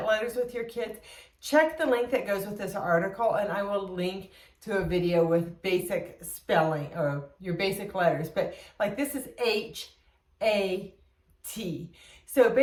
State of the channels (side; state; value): both; identical; correlation 1.00